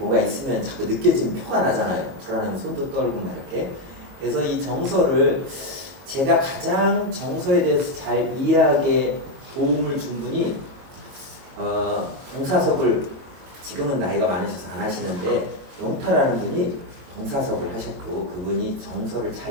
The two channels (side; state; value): left; late; 22 ms